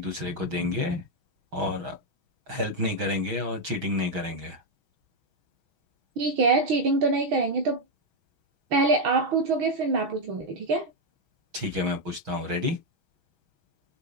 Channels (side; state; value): left; late; 6.3 ms